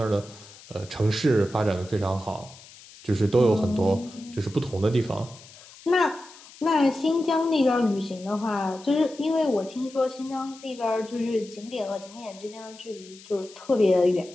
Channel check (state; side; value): noise; left; hiss, 20 dB below the sound